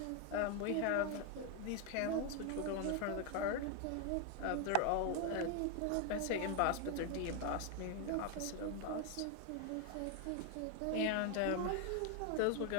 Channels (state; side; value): different; both; correlation 0.00